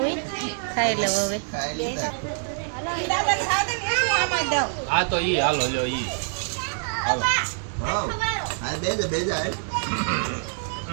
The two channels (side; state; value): left; silent; digital silence